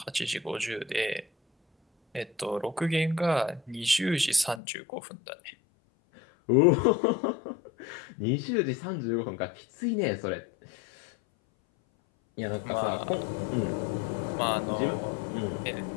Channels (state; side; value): drops out; right; at 4.6 s